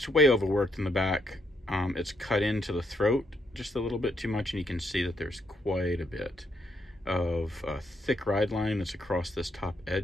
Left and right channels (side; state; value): both; normal; correlation 0.76